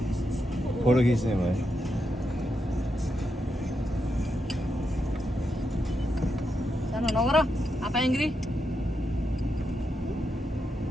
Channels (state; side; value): normal; both; correlation 0.84